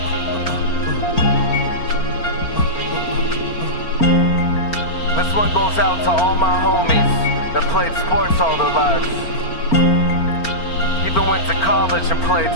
This one goes out to all my homies that played sports all their lives. Even went to college and played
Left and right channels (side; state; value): right; late; 4.4 ms